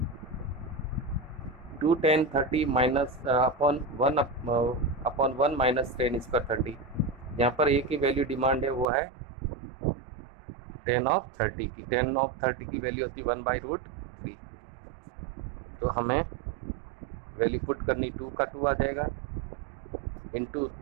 2 10 30 माइनस अपॉन 1 माइनस 10 स्क्वायर 30। यहाँ पर एक ही वैल्यू डिमांड है, वो है 10 ऑफ 30 की। 10 ऑफ 30 की वैल्यू होती है 1/√3। तो हमें वैल्यू पुट करनी 2 का 2 आ जाएगा, इंटू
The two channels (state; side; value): drops out; left; at 8.8 s